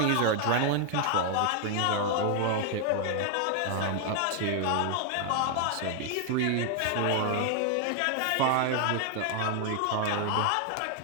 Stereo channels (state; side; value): different; both; correlation 0.00